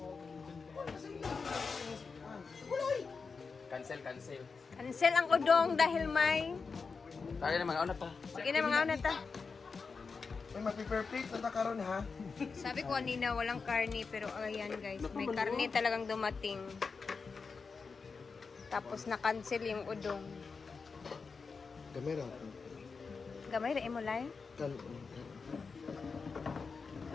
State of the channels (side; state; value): right; quieter; 4.9 dB